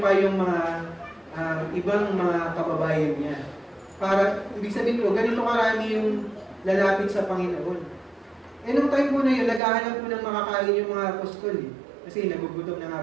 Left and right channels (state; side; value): drops out; left; at 9.6 s